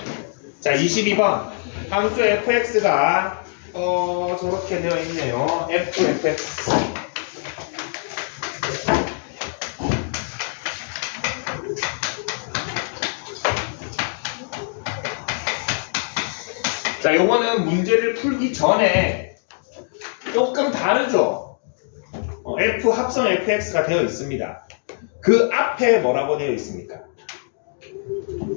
자, 22번 함수 fx가 저렇게 되어 있네요. fx 자, 요거는 문제를 풀기 전에 조금 다르죠. f 합성 fx가 되어 있습니다. 그 앞에 뭐라고 되어 있습니까?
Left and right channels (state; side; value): silent; right; 64 dB below the other